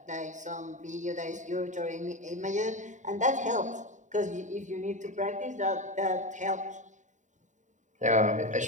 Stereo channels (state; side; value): late; left; 0.36 ms